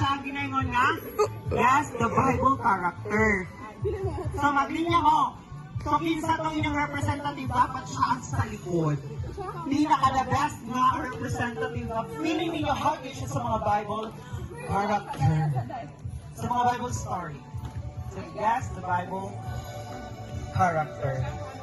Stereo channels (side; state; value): both; identical; correlation 1.00